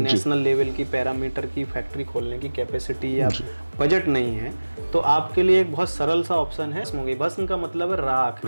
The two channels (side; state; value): both; inverted; correlation -1.00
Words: लेवल की पैरामीटर की फैक्ट्री खोलने की कैपेसिटी या बजट नहीं है, तो आपके लिए एक बहुत सरल सा ऑप्शन है भस्म। भस्म का मतलब है राख।